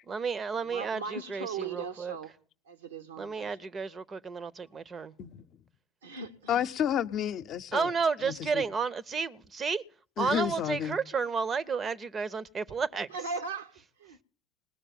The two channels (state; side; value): normal; both; correlation 0.65